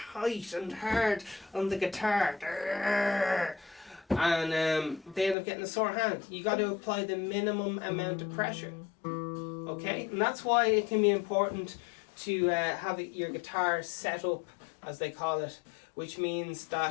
and hard on the guitar. And they end up getting a sore hand. You got to apply the minimum amount of pressure. Okay? And that's why it can be important to have your guitar set up, as they call it, which means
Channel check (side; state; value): right; drops out; at 5.4 s